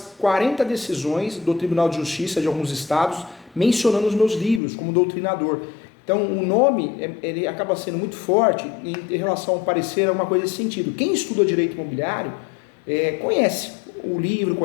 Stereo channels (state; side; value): drops out; right; at 4.6 s